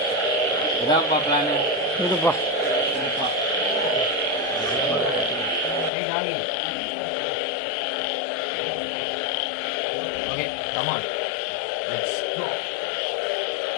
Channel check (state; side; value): drops out; right; at 5.9 s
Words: இதான் பார்க்கலான்னு இதுப்பா ஓகே கமான் லெட்ஸ் கோ.